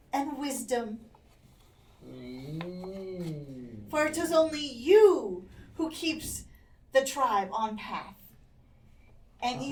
and wisdom. For it is only you who keeps the tribe on path. And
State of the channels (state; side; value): identical; both; correlation 1.00